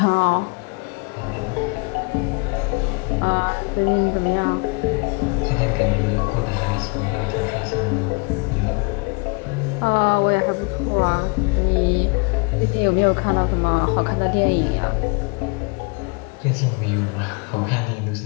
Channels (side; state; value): right; quieter; 31.6 dB